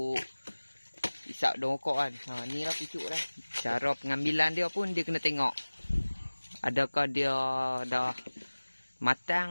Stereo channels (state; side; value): inverted; both; correlation -1.00